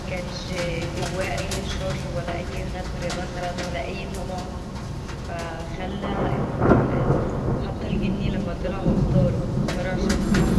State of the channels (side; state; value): both; identical; correlation 1.00